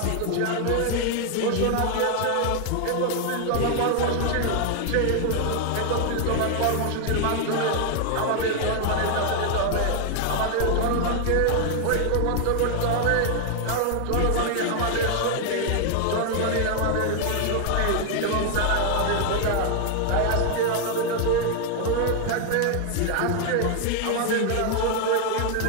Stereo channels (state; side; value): different; both; correlation 0.00